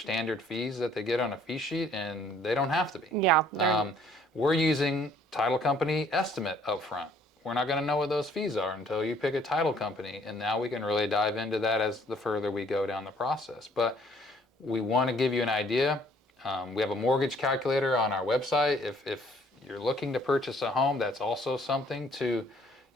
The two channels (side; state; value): both; normal; correlation 0.60